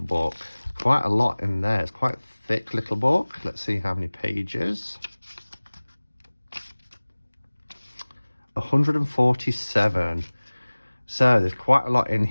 book. Quite a lot in there. It's quite a thick little book. Let's see how many pages. 147. So there's quite a lot in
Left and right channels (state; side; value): inverted; both; correlation -1.00